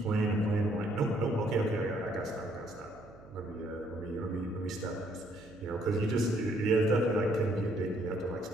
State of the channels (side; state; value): right; noise; hum, 21 dB below the sound